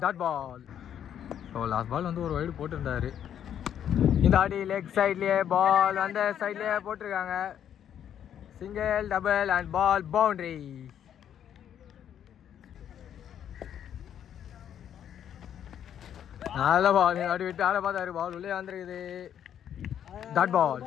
dot ball. So last ball வந்து ஒரு வைடு போட்டிருந்தாரு. இந்த ஆட்டி லெக் சைட்லேயே பால் அந்த சைட்லேயே போட்டிருக்காங்க. Single, double and ball boundary. நல்ல பால், அப்படி விட்டு ஆட பார்த்தாரு, பால் உள்ளே வந்துருக்குது, டாட் பால்.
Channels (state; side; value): quieter; right; 9.6 dB